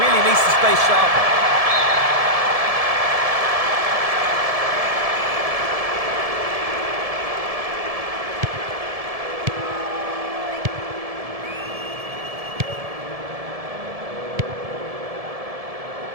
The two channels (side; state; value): left; late; 1.7 ms